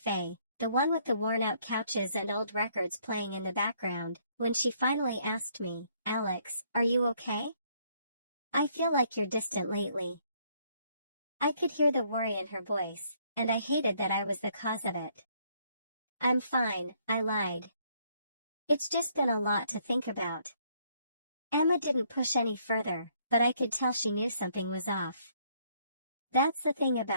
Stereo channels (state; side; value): inverted; both; correlation -0.67